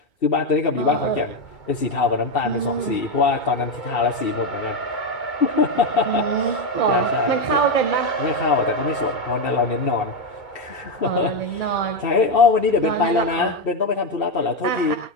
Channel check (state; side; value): late; right; 2.7 ms